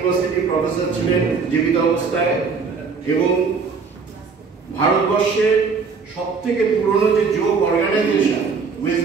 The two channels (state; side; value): quieter; left; 5.2 dB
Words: প্রফেসর ছিলেন জীবিত অবস্থায় এবং ভারতবর্ষের সবথেকে পুরনো যে যোগ অর্গানাইজেশন ওয়েস্ট